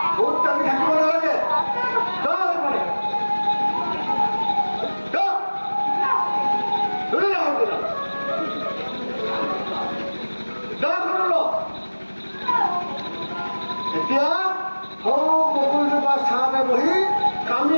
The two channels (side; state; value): both; inverted; correlation -1.00